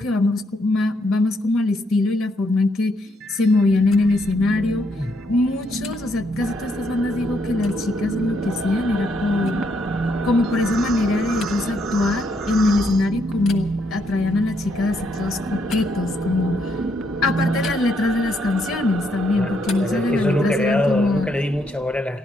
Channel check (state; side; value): normal; both; correlation 0.74